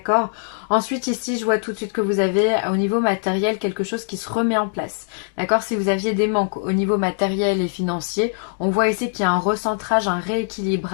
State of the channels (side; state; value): right; silent; digital silence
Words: Ensuite ici je vois tout de suite que vous avez au niveau matériel quelque chose qui se remet en place, d'accord. Si vous aviez des manques au niveau matériel et financier, on voit ici qu'il y a un recentrage, un